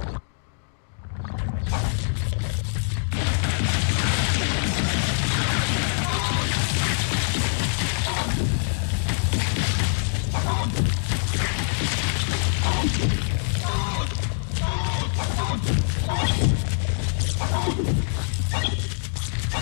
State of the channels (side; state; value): right; silent; digital silence